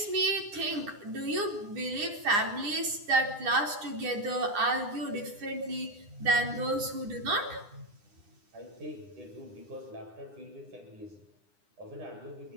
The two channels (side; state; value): left; late; 9.9 ms